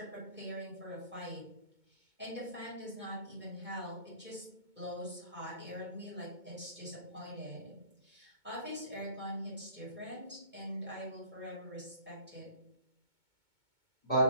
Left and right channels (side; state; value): left; late; 2.2 ms